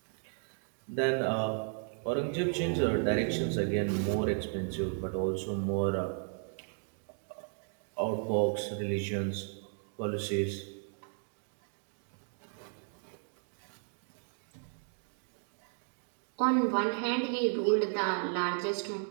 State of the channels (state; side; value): silent; left; 55 dB below the other